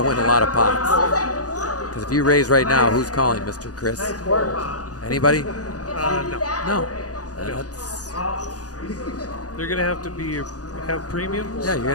win a lot of pots. Because if you raise right now, who's calling, Mr. Chris? Anybody? No. No. That's, They're going to have to have premiums. yeah, you're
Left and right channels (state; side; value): late; right; 0.67 ms